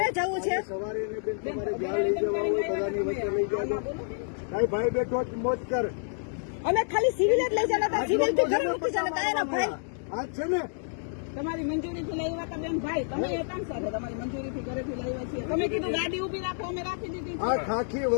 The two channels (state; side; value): silent; right; 59 dB below the other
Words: જવું છે. સવારે એને બેન તમારે જ્યાં લઈ જવા હોય બધાની વચ્ચે લઈ જાજો. ભાઈ બેઠો જ મોજ કર. અમે ખાલી સિવિલ જ લઈ જતા હતા, સિવિલ થી ઘરે મૂકી જતા હતા એના ભાઈ. આ છે ને તમારી મંજૂરીથી લાવ્યા હતા બેન ભાઈ, તમે હતા સાથે તમારી મંજૂરીથી ઘરેથી લાવ્યા છીએ. તમે કીધું ગાડી ઉભી રાખો, અમે રાખી દીધી છે. આ ખાખી